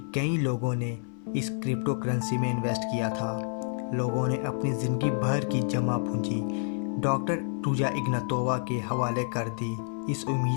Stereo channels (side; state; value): right; silent; 58 dB below the other